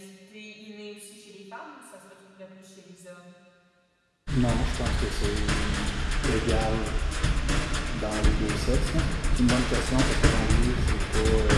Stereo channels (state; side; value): identical; both; correlation 1.00